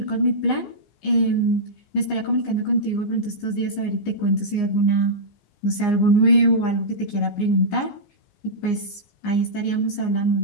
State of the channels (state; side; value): late; right; 15 ms